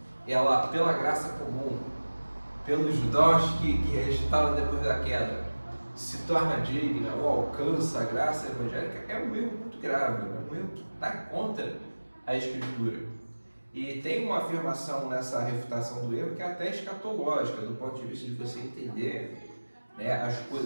ela, pela graça comum, pelos dons que restaram depois da queda, se torna digna ou alcança a graça evangélica, é um erro muito grave, é um erro que está contra a Escritura. E tem uma afirmação nessa refutação do erro que é até escatológica, do ponto de vista de você entender, né, as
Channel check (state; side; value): inverted; both; correlation -1.00